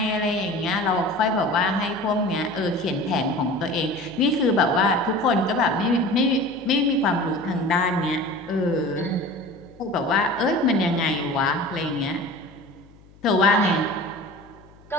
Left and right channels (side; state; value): left; noise; hum, 26 dB below the sound